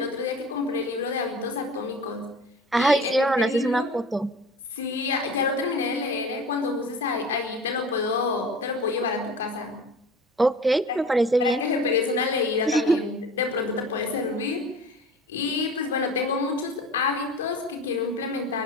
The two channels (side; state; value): both; normal; correlation 0.39